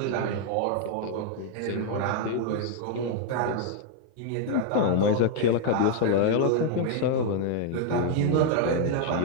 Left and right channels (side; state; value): both; different; correlation 0.00